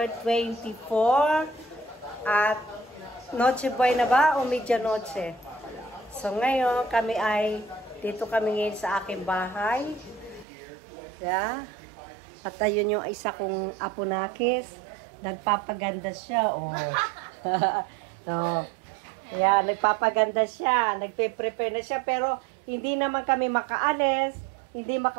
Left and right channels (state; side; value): drops out; left; at 10.5 s